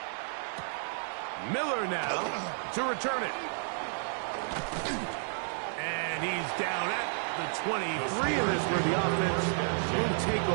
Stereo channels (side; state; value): left; silent; 57 dB below the other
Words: Miller now to return it. And he's down at the 23, and this where the offense will take